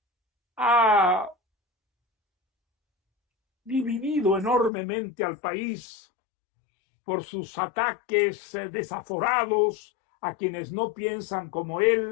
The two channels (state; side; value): drops out; right; at 4.7 s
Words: ha dividido enormemente al país por sus ataques desaforados a quienes no piensan como